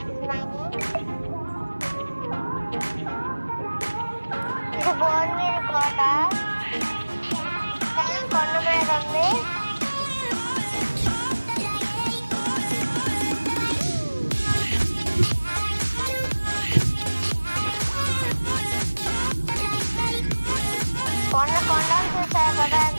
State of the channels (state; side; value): inverted; both; correlation -1.00